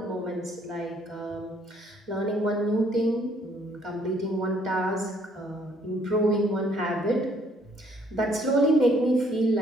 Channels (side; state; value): both; normal; correlation 0.64